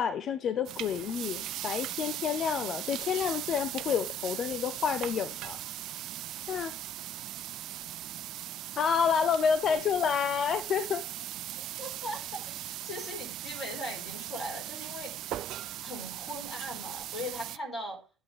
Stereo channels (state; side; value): quieter; right; 3.3 dB